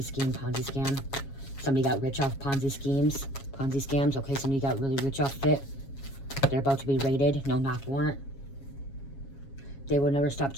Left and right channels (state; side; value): late; right; 7.3 ms